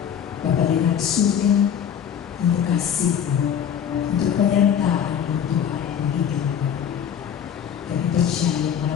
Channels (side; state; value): right; quieter; 8.7 dB